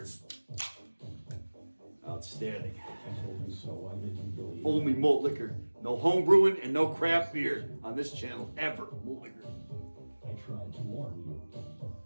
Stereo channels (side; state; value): both; inverted; correlation -1.00